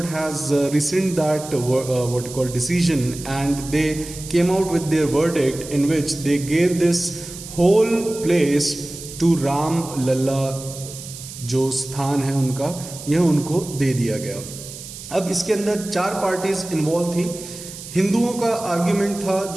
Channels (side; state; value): right; noise; hiss, 13 dB below the sound